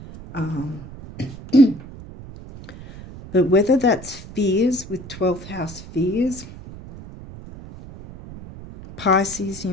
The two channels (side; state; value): right; noise; rumble, 15 dB below the sound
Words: But whether that's fears with 12th house fears, Pisces, you